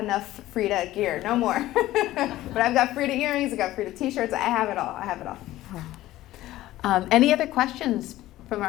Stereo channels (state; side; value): quieter; right; 15.5 dB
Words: Frida gear, no more. But I've got Frida earrings, I've got Frida t-shirts, I have it all. Any other questions from